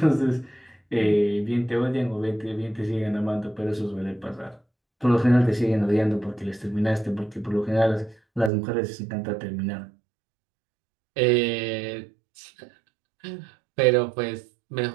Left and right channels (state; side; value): drops out; left; at 8.5 s